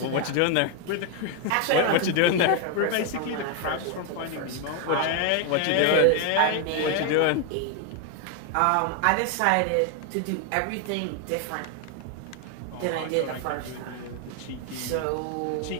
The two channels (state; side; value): different; both; correlation 0.01